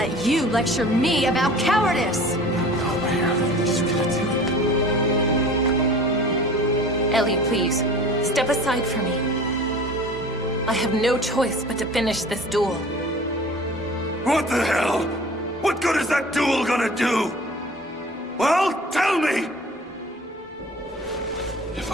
you lecture me about cowardice! Ellie, please, step aside for me. I have no choice but to finish this duel. What the hell? What good is that duel gonna do? Well, tell me! If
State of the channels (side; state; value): both; normal; correlation 0.43